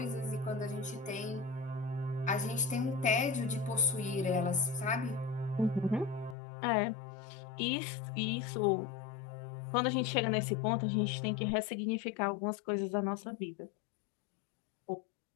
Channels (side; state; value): right; drops out; at 6.4 s